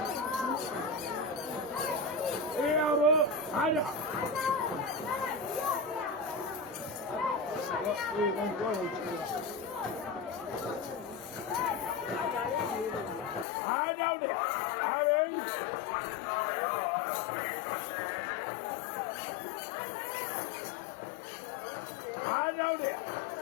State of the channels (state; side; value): drops out; right; at 13.5 s